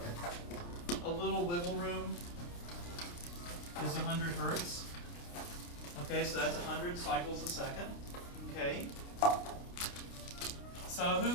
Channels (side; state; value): right; late; 29 ms